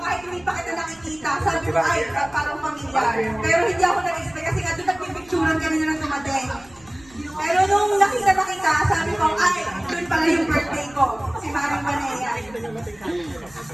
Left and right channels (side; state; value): right; noise; rumble, 26 dB below the sound